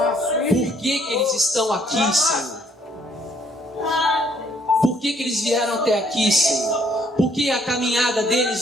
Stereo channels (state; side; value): normal; both; correlation 0.65